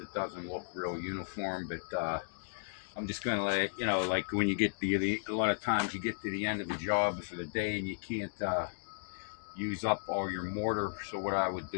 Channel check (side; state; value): right; silent; digital silence